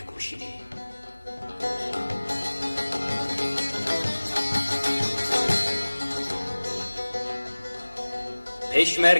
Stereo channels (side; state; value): both; inverted; correlation -1.00